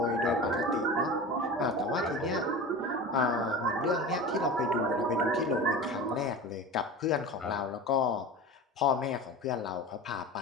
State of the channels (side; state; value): both; normal; correlation 0.31